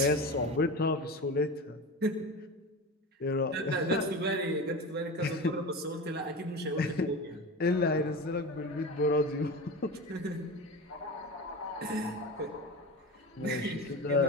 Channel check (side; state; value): both; normal; correlation 0.27